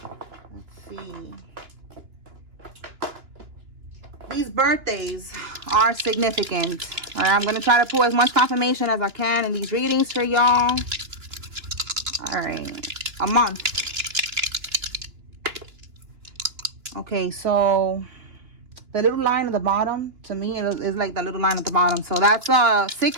see. These birthdays are significant. All right, I'm going to try to pull as much confirmation as I can in these readings for y'all. All right, a month. Okay, so the little line at the bottom, to me, it is like the little line at the bottom. So that's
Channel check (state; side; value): late; left; 2.9 ms